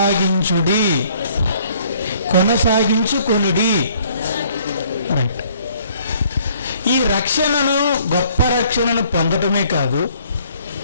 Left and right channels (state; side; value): inverted; both; correlation -0.61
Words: రైట్. ఈ రక్షణను, గొప్ప రక్షణను పొందటమే కాదు,